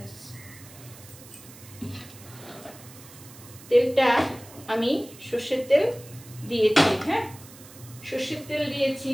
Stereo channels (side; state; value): right; noise; hiss, 19 dB below the sound